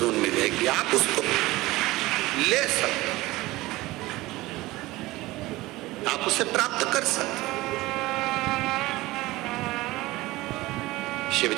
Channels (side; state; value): left; quieter; 19.2 dB